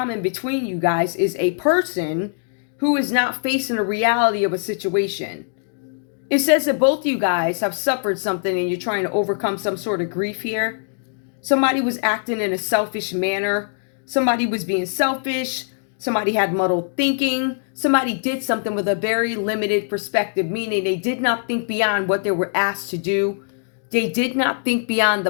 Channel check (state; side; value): silent; right; digital silence